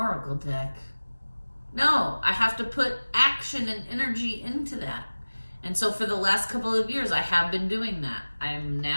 deck. No, I have to put action and energy into that. And so for the last couple of years, I have been doing that. I'm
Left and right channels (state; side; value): inverted; both; correlation -1.00